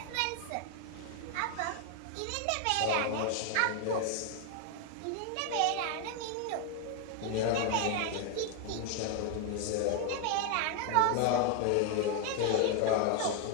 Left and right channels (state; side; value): different; both; correlation 0.01